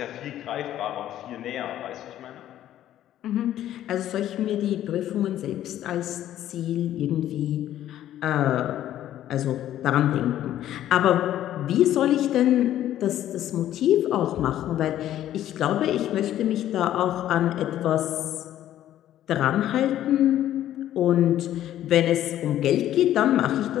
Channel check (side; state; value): right; quieter; 12.3 dB